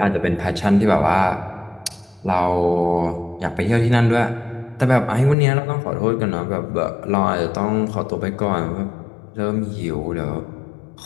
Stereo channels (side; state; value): right; drops out; at 5.4 s